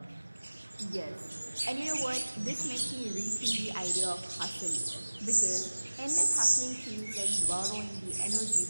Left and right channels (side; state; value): both; inverted; correlation -1.00